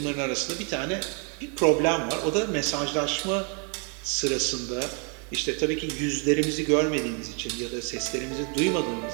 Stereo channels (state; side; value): quieter; left; 37.9 dB